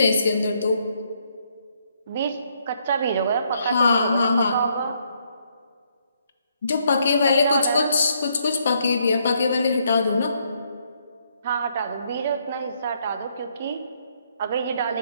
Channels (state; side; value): inverted; both; correlation -0.72